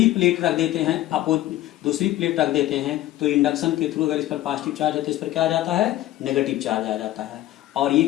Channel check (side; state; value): right; quieter; 15.0 dB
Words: प्लेट रख देते हैं, दूसरी प्लेट रख देते हैं, तो इंडक्शन के थ्रू अगर इस पर पॉजिटिव चार्ज है तो इस पर क्या आ जाता है? नेगेटिव चार्ज आ जाता है, और ये